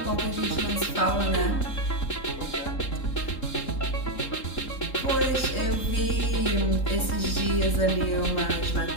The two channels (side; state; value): right; late; 3.8 ms